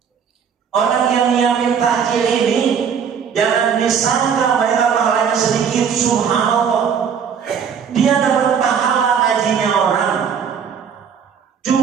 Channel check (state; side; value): quieter; left; 7.2 dB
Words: Orang yang nyiapin takjil ini jangan disangka mereka pahalanya sedikit. Subhanallah, dia dapat pahala ngajinya orang,